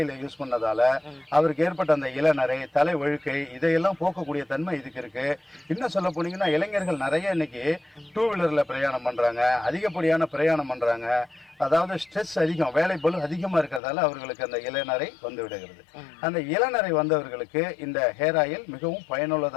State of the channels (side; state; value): right; drops out; at 13.8 s